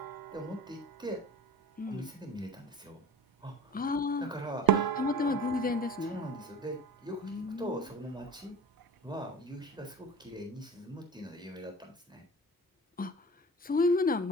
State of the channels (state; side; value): normal; both; correlation 0.38